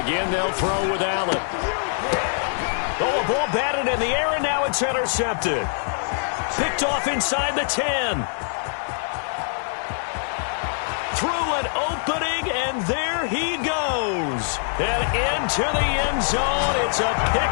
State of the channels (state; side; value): silent; right; digital silence